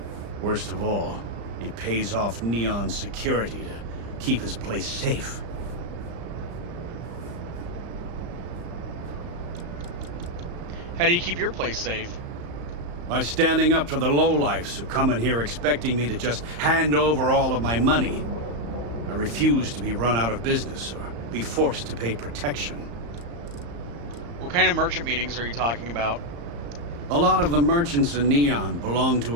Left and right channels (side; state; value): left; late; 35 ms